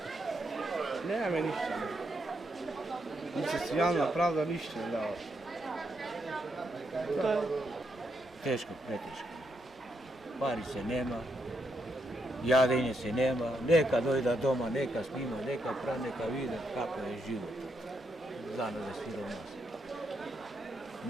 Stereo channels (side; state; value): both; normal; correlation 0.80